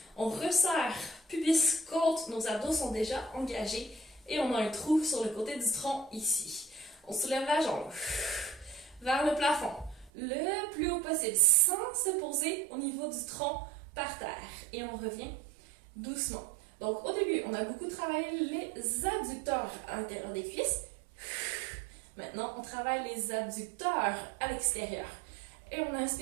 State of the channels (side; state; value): left; drops out; at 10.1 s